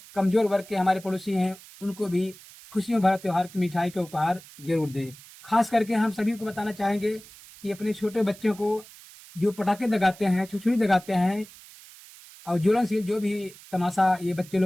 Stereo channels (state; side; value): noise; right; hiss, 20 dB below the sound